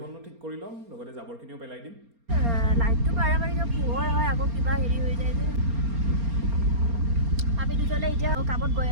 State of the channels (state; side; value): late; left; 4.3 ms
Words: ঠিক কৰি ল'ম লগতে জাবৰখিনিও পেলাই দিম লাইটটো বাৰে পোহৰ হয় আকৌ কিবা হেৰি হৈ যায় যে আমি দুজনে এতিয়া কামত গৈ